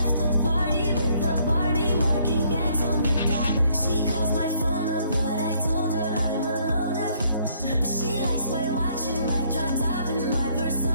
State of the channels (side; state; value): both; inverted; correlation -0.66